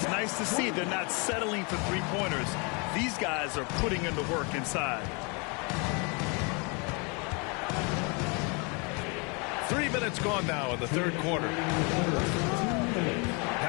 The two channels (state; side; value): quieter; right; 32.4 dB